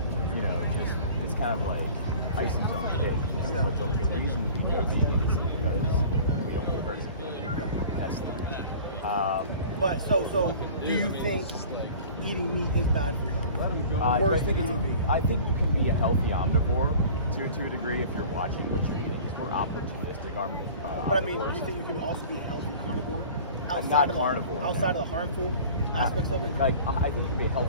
it's kind of like icing on the cake. Yeah. But the reason you go vegan is because we don't want to hurt somebody. That's the reason. But so do you think eating meat is bad for your health? Worse than eating vegan? I think you can be a healthy omnivore to a degree if you're watching what you eat. We're opportunistic omnivores. But I mean, do you think you can also be a healthy carnivore? Not carnivore. Outside of the harmful aspects of it? Like, I think you can be a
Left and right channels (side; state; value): both; inverted; correlation -0.43